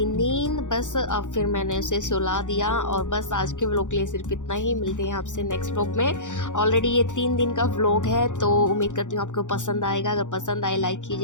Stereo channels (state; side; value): late; right; 0.86 ms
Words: नींद, बस अब फिर मैंने उसे सुला दिया। और बस आज के व्लॉग के लिए सिर्फ इतना ही, मिलते हैं आपसे नेक्स्ट व्लॉग में। ऑलरेडी ये 3 दिन का व्लॉग है, तो उम्मीद करती हूँ आपको पसंद आएगा। अगर पसंद आए लाइक